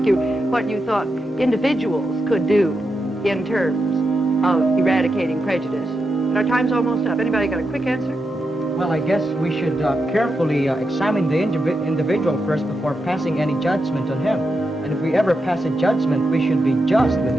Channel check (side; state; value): both; normal; correlation 0.86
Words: you what you thought individuals could do in terms of eradicating prejudice. But our time's almost up. Anybody got a quick answer? Well, I guess we should carefully examine the individual first before passing any judgment on him. And if we ever pass a judgment, we should be just with